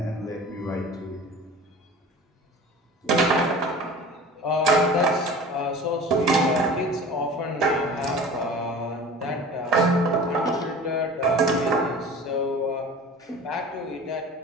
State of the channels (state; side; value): normal; both; correlation 0.39